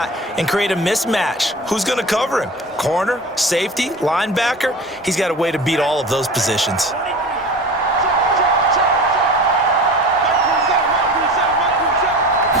and create a mismatch. Who's going to cover him? Corner, safety, linebacker? He's got a way to beat all of those positions.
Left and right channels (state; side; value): normal; both; correlation 0.35